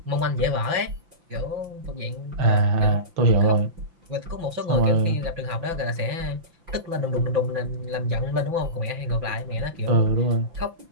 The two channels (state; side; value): late; left; 5.9 ms